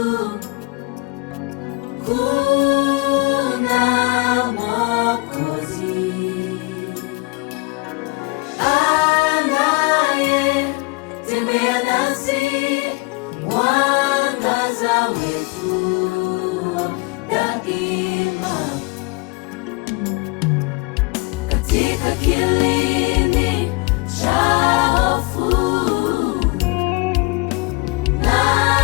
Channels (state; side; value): quieter; right; 27.1 dB